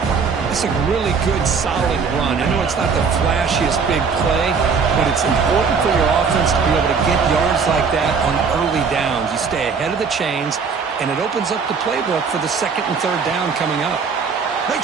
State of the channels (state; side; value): quieter; left; 5.5 dB